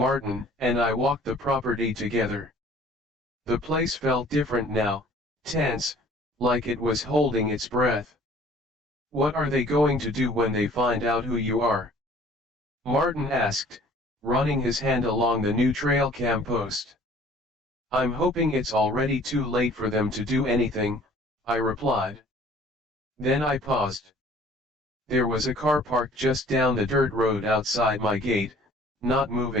and I walked the property together. The place felt different now, tense, like it was holding its breath. "What are they going to do when they find out who you are?" Martin asked, running his hand along the new trail cam post. "I'm hoping it's already too late for them to do anything," I replied. Then I paused. There was a car parked just down the dirt road outside my gate, not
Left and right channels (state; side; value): normal; both; correlation 0.52